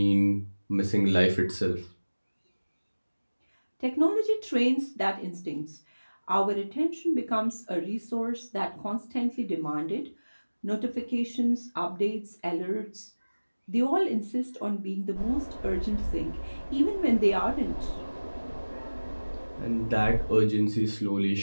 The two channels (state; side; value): inverted; both; correlation -1.00